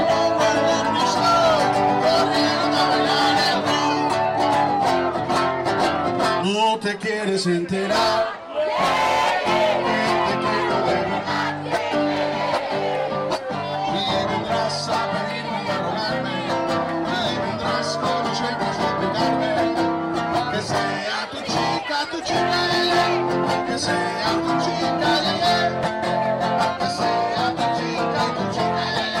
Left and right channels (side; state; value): both; identical; correlation 1.00